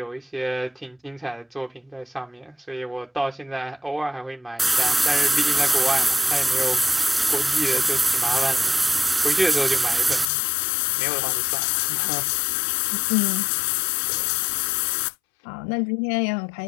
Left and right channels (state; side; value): drops out; right; at 10.3 s